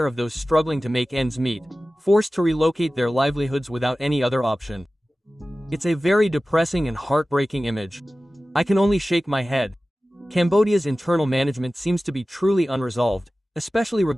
of those struggling to make ends meet, forced to relocate their livelihoods without any other option. It's a very depressing and heartbreaking image. I can only shake my head. Cambodia's internal management seems to be truly unresolved, especially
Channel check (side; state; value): both; normal; correlation 0.96